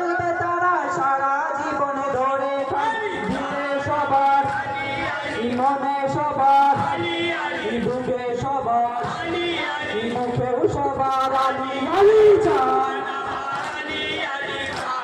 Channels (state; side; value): identical; both; correlation 1.00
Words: তারা সারা জীবনে ধরে দিলে সবার মনে সবার বুকে সবার মুখেও সবার আলী আলী চান